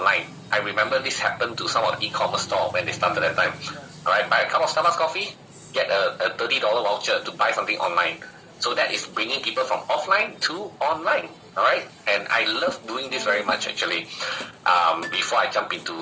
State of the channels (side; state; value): both; identical; correlation 1.00